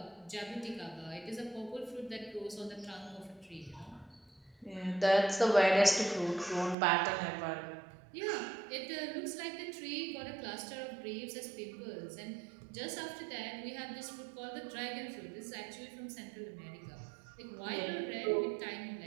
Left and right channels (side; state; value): left; drops out; at 6.8 s